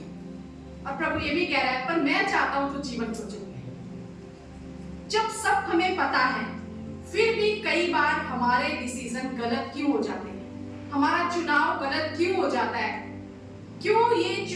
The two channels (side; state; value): both; identical; correlation 1.00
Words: और प्रभु ये भी कह रहा है, पर मैं चाहता हूँ तू जीवन को चुन ले। जब सब हमें पता है, फिर भी कई बार हमारे डिसीजन गलत क्यों हो जाते हैं, हमारा चुनाव गलत क्यों हो जाता है? क्यों ये